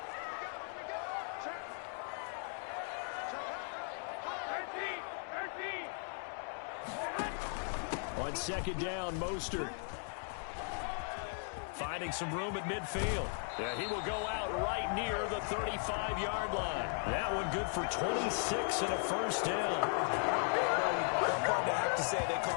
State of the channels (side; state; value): right; silent; 53 dB below the other